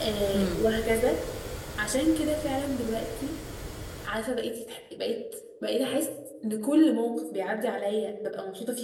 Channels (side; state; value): both; identical; correlation 1.00